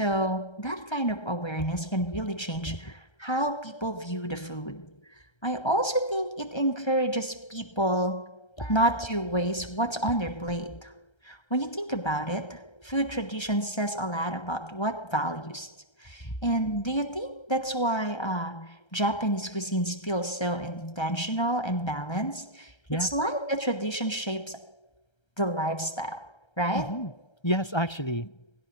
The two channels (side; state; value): right; late; 1.3 ms